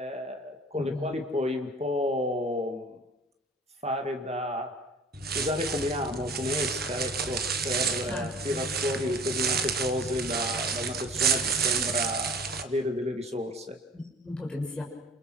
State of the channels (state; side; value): normal; both; correlation 0.45